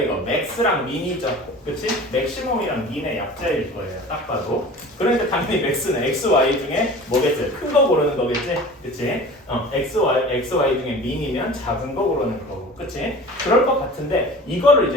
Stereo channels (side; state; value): both; normal; correlation 0.40